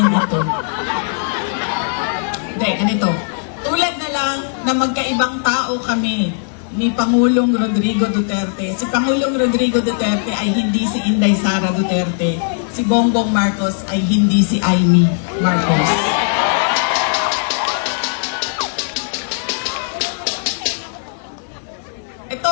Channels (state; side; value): silent; right; digital silence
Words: ito? Hindi, ganito. Tulad na lang na magkaibang tao kami ni Pangulong Rodrigo Duterte. Si Pangulong Rodrigo Duterte ay hindi si Inday Sara Duterte. Si Bongbong Marcos ay hindi si Amy Marcos.